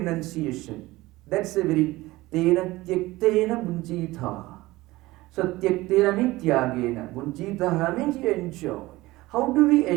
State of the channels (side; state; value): left; quieter; 19.1 dB